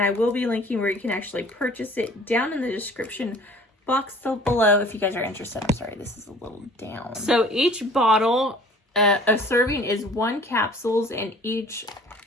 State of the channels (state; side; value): normal; both; correlation 0.49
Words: I will be linking where you can actually purchase it down in the description box below if you guys are interested. I'm sorry, this is a little down. So each bottle, a serving is 1 capsules, and each